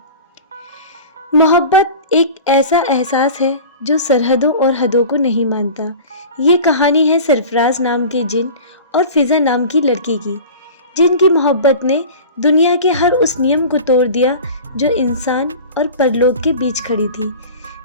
मोहब्बत एक ऐसा एहसास है जो सरहदों और हदों को नहीं मानता। ये कहानी है सरफराज नाम के जिन और फिज़ा नाम की लड़की की, जिनकी मोहब्बत ने दुनिया के हर उस नियम को तोड़ दिया जो इंसान और परलोक के बीच खड़ी थी।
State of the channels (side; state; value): both; inverted; correlation -0.37